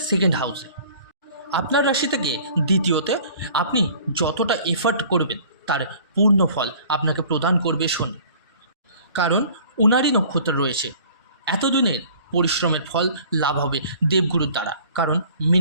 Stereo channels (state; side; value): inverted; both; correlation -0.50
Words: সেকেন্ড হাউসে। আপনার রাশি থেকে দ্বিতীয়তে আপনি যতটা এফার্ট করবেন তার পূর্ণ ফল আপনাকে প্রদান করবে শনি, কারণ উনারই নক্ষত্র রয়েছে। এতদিনের পরিশ্রমের ফল লাভ হবে দেবগুরুর দ্বারা, কারণ